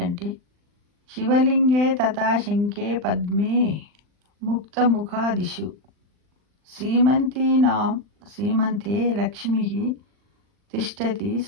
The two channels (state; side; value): late; left; 39 ms